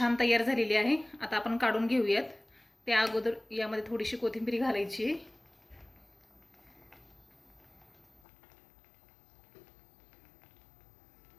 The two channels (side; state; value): right; drops out; at 8.2 s